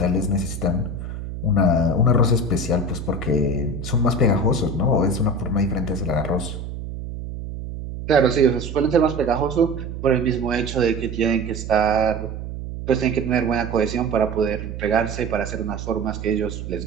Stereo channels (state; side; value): noise; right; hum, 8 dB below the sound